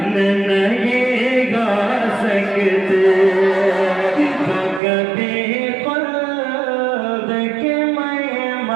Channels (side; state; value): left; drops out; at 4.8 s